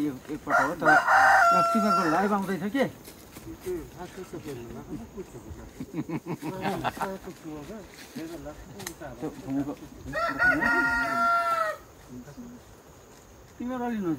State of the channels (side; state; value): both; identical; correlation 1.00